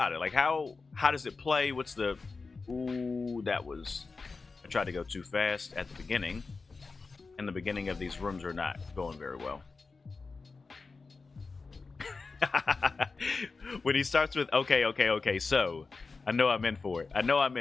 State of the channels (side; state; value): right; quieter; 4.2 dB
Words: it. Like, how does it play? What's the... Ooh, that was... I tried to go too fast at the beginning. And the beginning of these rooms are not going very well. When he starts with, okay, so... I know I'm in for